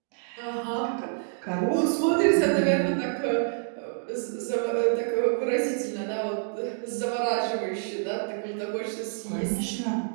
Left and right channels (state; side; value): silent; left; digital silence